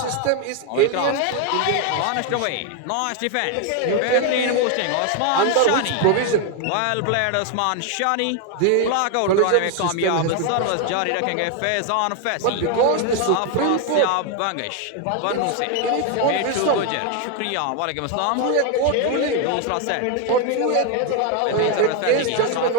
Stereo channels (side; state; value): both; different; correlation 0.01